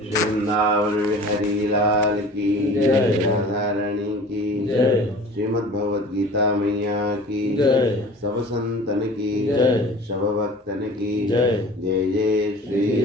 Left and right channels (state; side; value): normal; both; correlation 0.43